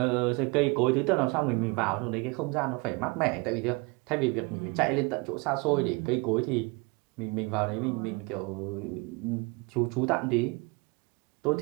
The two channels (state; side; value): quieter; left; 28.1 dB